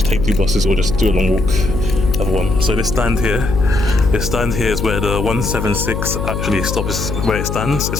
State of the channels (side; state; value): left; noise; hum, 4 dB below the sound